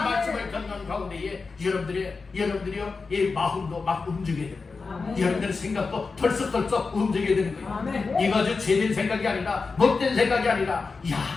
듣는 가운데에 여러분들이요 이 마음도 막 움직여야 되는 거예요. 여러분들의 생각도 털썩털썩 움직여야 되는 거예요. 이거 제된 생각이 아니라 못된 생각이 아니라 야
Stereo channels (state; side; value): quieter; right; 4.4 dB